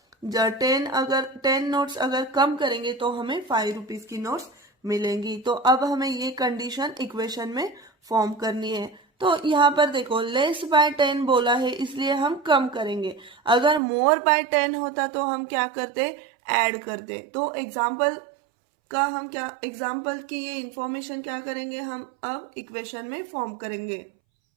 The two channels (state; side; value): drops out; left; at 13.8 s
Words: 10 नोट्स अगर कम करेंगे तो हमें 5 रुपीज की नोट्स मिलेंगी। तो अब हमें ये कंडीशन इक्वेशन में फॉर्म करनी है। तो यहाँ पर देखो लेस बाय 10 बोला है इसलिए हम कम करेंगे, अगर मोर बाय 10 होता तो हम क्या करते, ऐड करते। तो एग्जाम्पल की ये इंफॉर्मेशन क्या करेंगे, हम अब इक्वेशन में फॉर्म करेंगे।